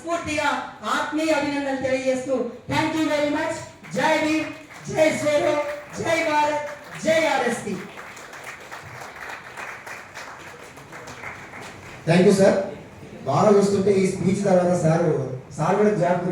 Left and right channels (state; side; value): identical; both; correlation 1.00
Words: ఆత్మీయ అభినందనలు తెలియజేస్తూ థ్యాంక్ యూ వెరీ మచ్. జై భీమ్, జై శ్రీరో, జై భారత్, జై ఆర్ఎస్పీ. Thank you sir. బాగా చూస్తుంటే ఈ స్పీచ్ తర్వాత సార్ కూడా జాబ్